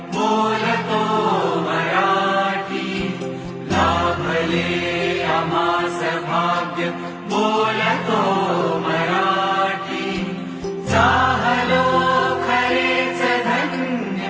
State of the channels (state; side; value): identical; both; correlation 1.00